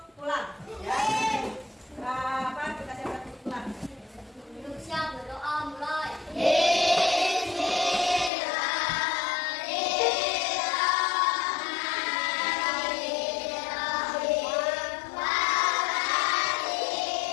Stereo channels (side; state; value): right; drops out; at 8.3 s